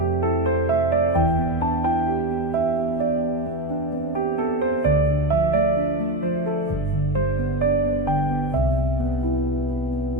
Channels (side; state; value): right; late; 1.3 ms